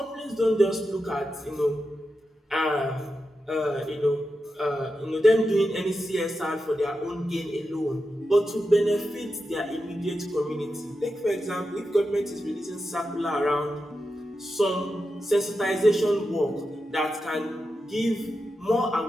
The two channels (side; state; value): both; normal; correlation 0.89